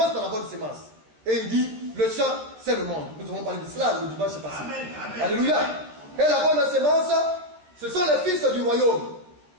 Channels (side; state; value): left; late; 14 ms